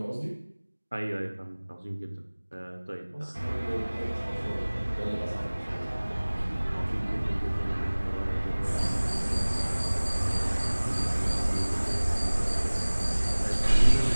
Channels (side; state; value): both; inverted; correlation -1.00